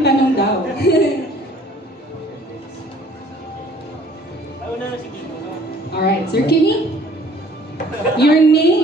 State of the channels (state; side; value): normal; both; correlation 0.55